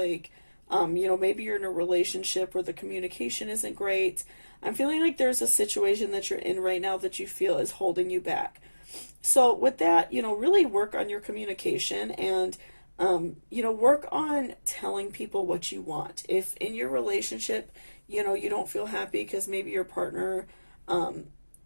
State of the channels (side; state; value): both; inverted; correlation -1.00